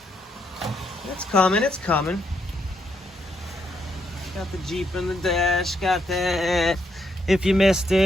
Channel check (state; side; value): normal; both; correlation 0.76